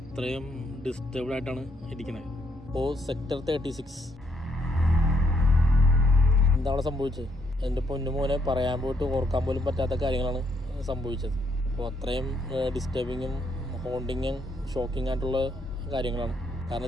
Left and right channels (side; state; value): both; normal; correlation 0.73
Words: ഡിസ്റ്റർബ്ഡ് ആയിട്ടാണ് ഇരിക്കുന്നത്. ഇപ്പോൾ സെക്ടർ 36 എന്താണ് സംഭവിച്ചത്? എൻ്റെ പൊന്നുമോനെ പറയാൻ പോയിട്ട് ഓർക്കാൻ പോലും പറ്റാത്ത കാര്യങ്ങളാണ് സംഭവിച്ചത്. അപ്പോൾ അത്രയും ഡിസ്റ്റർബിങ്ങും ഹോണ്ടിങ്ങും ഷോക്കിംഗ് ആയിട്ടുള്ള കാര്യങ്ങളാണ്. കാരണം